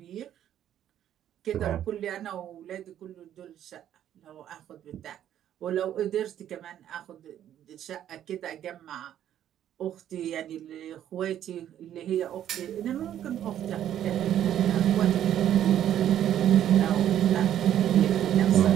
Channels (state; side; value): quieter; left; 10.9 dB